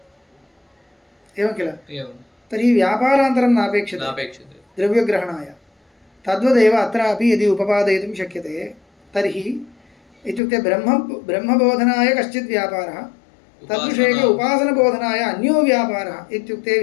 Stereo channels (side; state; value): right; drops out; at 10.4 s